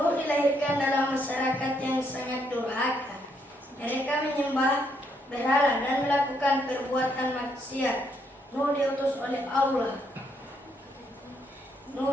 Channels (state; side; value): normal; both; correlation 0.74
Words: dilahirkan dalam masyarakat yang sangat durhaka. Mereka menyembah berhala dan melakukan perbuatan maksiat. Nuh diutus oleh